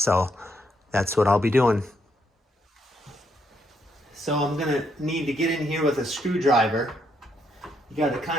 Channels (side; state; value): both; normal; correlation 0.75